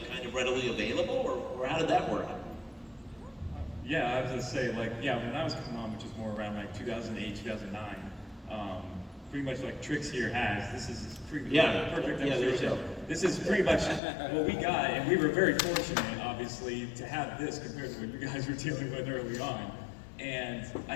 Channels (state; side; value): drops out; right; at 14.0 s